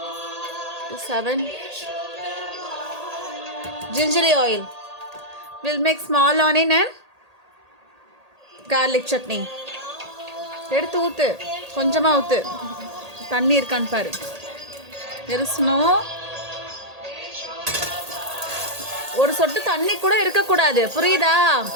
7 gingerly oil. We'll make small onion and garlic chutney. எடுத்து ஊத்து. கொஞ்சமாக ஊற்று. தண்ணி இருக்கான்னு பாரு. இருசணும். ஒரு சொட்டு தண்ணி கூட இருக்கக்கூடாது, புரியுதா?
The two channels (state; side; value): late; left; 1.8 ms